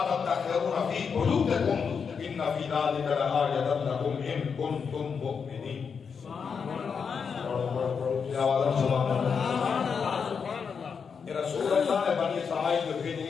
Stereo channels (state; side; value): quieter; right; 6.1 dB